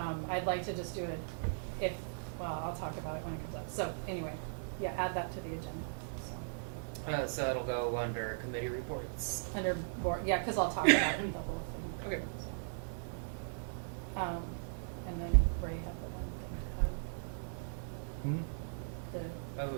I'd like to just do it I'll talk about it when it comes up. So anyway, yeah, add that to the agenda. So, So it'll go under committee reports. under board, yeah, cause I'll talk about the whole thing. Okay. And then Ray had the one thing, the Oh,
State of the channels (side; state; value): left; silent; digital silence